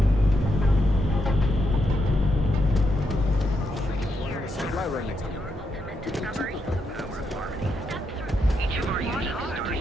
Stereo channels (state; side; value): normal; both; correlation 0.81